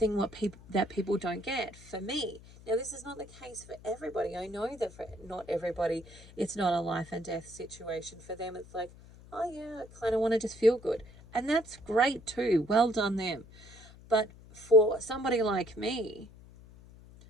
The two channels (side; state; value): left; noise; hum, 20 dB below the sound